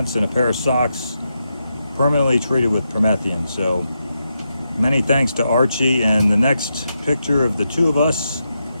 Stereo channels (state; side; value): inverted; both; correlation -0.85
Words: and a pair of socks permanently treated with Promethean. So many thanks to Archie. And the next picture of the 2 of us